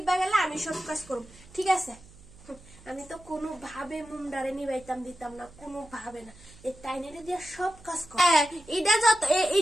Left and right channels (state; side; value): noise; right; hum, 22 dB below the sound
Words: গেলে আমি সব কাজ করব ঠিক আছে আমি তো কোনো ভাবে মুমডারে নিবাইতাম দিতাম না কোনো ভাবে না এই টাইনেরে দিয়ে সব কাজ করে এটা